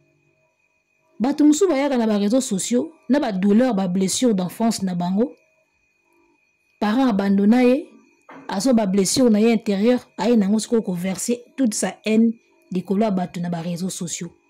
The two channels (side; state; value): both; identical; correlation 1.00